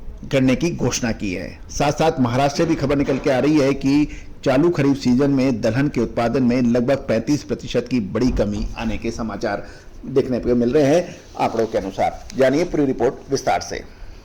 की घोषणा की है। साथ साथ महाराष्ट्र से भी खबर निकल के आ रही है कि चालू खरीफ सीजन में दलहन के उत्पादन में लगभग 35% की बड़ी कमी आने के समाचार देखने को मिल रहे हैं आंकड़ों के अनुसार। जानिए पूरी रिपोर्ट विस्तार से।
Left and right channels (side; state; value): both; identical; correlation 1.00